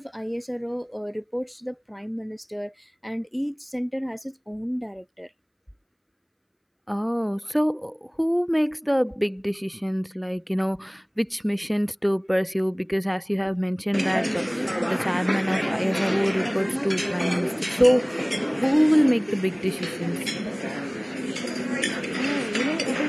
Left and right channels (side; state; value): both; identical; correlation 1.00